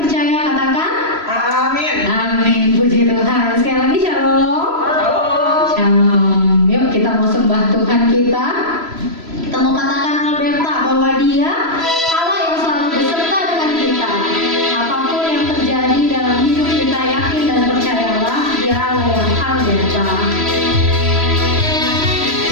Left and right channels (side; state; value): left; late; 3.0 ms